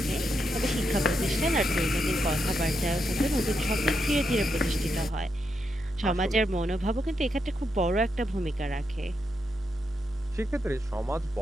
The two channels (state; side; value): normal; both; correlation 0.82